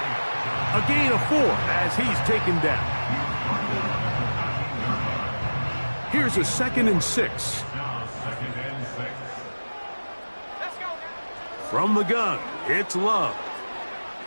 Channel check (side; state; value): both; inverted; correlation -1.00